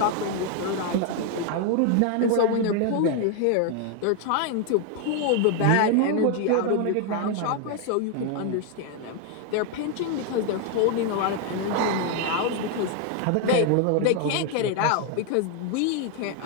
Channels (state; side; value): different; both; correlation 0.00